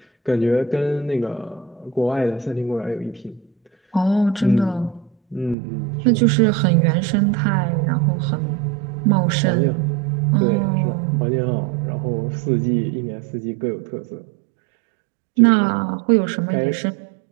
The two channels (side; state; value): left; drops out; at 5.6 s